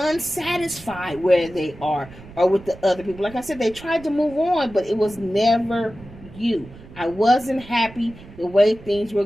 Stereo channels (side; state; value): right; noise; rumble, 19 dB below the sound